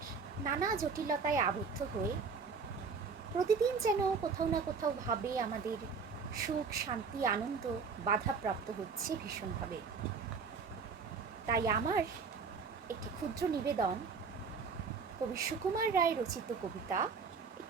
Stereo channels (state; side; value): quieter; left; 5.2 dB